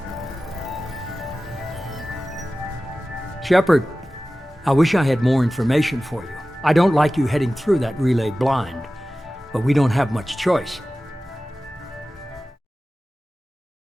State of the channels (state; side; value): normal; both; correlation 0.96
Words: Shepard, I wish I had more information for you. I don't like you heading through that relay blind, but we don't have much choice.